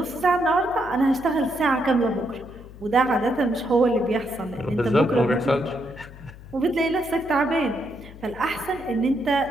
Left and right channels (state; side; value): noise; left; hum, 18 dB below the sound